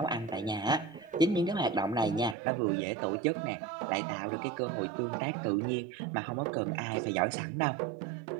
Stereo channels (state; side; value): drops out; left; at 2.4 s